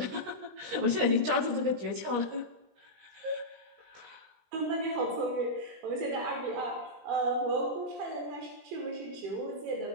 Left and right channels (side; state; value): left; late; 18 ms